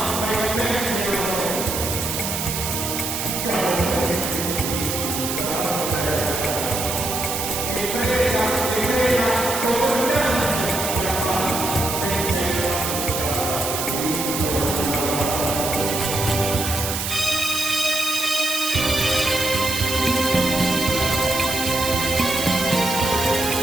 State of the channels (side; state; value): right; noise; hiss, 3 dB below the sound